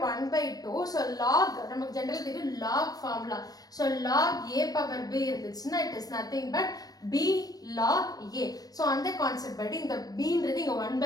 1 by 2. So log நமக்கு general தெரியும் log formula. So log A power B இருந்துச்சுன்னா it is nothing but B log A. So அந்த concept படி இந்த B ன்றது இங்க 1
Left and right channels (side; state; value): right; late; 0.18 ms